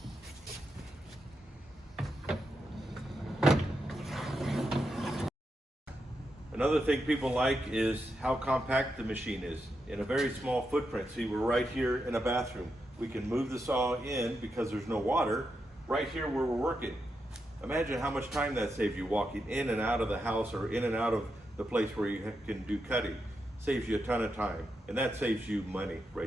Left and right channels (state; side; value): normal; both; correlation 0.85